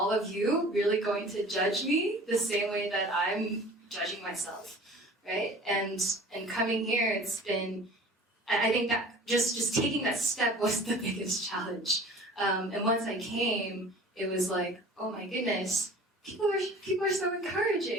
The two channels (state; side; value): normal; both; correlation 0.44